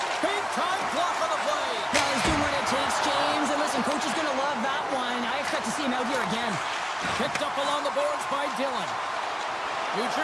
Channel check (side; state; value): both; identical; correlation 1.00